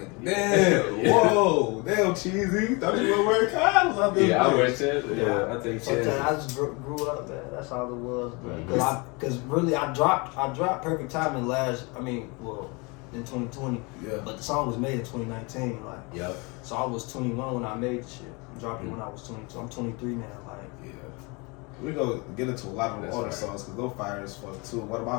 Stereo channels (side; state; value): right; quieter; 28.7 dB